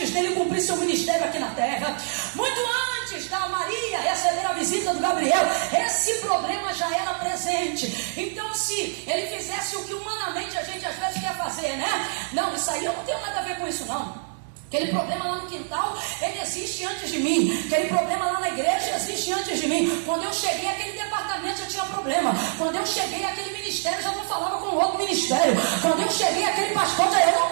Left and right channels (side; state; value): left; silent; digital silence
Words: dele cumprir seu ministério aqui na terra, muito antes da Maria receber a visita do Gabriel. Esse problema já era presente. Então, se ele fizesse o que humanamente a gente às vezes quer fazer, né? Não, isso aí eu não tenho nada a ver com isso, não. Aquele problema lá no quintal, ele existe antes de mim. Aquele problema lá na igreja existe antes de mim. Quando eu cheguei, aquele departamento já tinha problema. Quando eu cheguei, aquele ministério já não falava com o outro ministério. Quando eu cheguei, aquele pastor já... Eu não